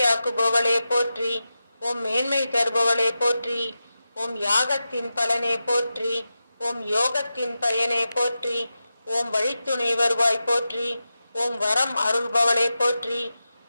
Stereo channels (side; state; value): both; inverted; correlation -0.91